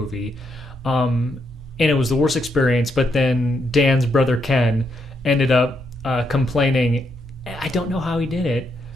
And it was the worst experience, but then Dan's brother Ken ended up complaining. I don't know how he did it,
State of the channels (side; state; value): both; normal; correlation 0.78